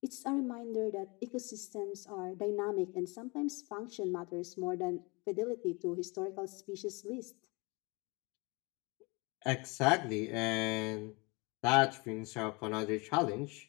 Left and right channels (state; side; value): quieter; right; 27.7 dB